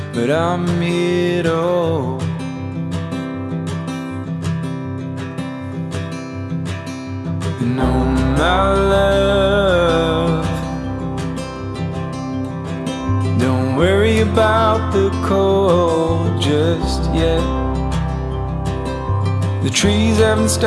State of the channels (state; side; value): identical; both; correlation 1.00